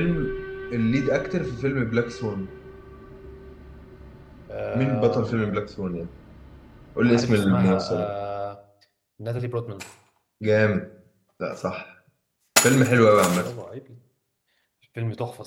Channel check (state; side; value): identical; both; correlation 1.00